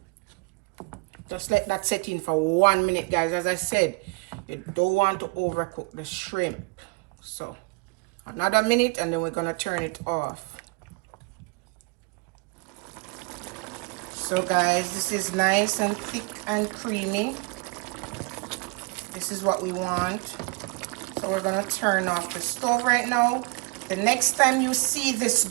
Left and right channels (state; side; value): quieter; left; 29.1 dB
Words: Just let that set in for 1 minute, guys. As I said, you don't want to overcook the shrimp. So another minute and then we're gonna turn it off. So guys, this is nice and thick and creamy. This is what we want. So we're gonna turn off the stove right now. The next time you see this